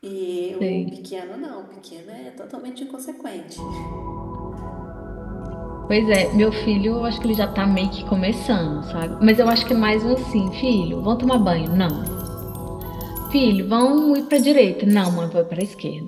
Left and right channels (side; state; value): both; identical; correlation 1.00